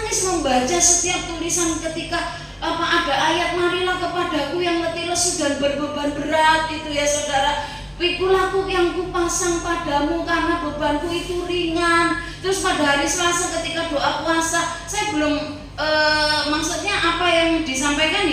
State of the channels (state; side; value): identical; both; correlation 1.00